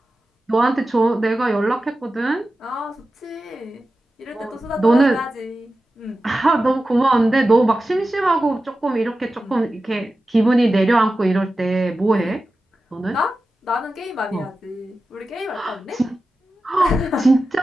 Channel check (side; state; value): both; normal; correlation 0.93